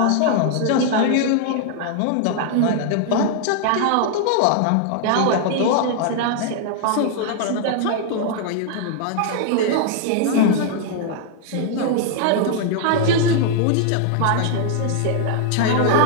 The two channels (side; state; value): both; different; correlation 0.00